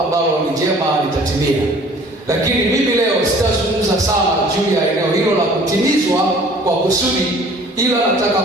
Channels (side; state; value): both; normal; correlation 0.51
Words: ni jema litatimia. Lakini mimi leo sitazungumza sana juu ya eneo hilo la kutimizwa kwa kusudi, ila nataka